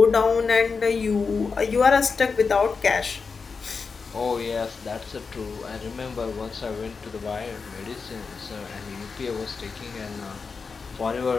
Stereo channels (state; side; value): quieter; right; 5.0 dB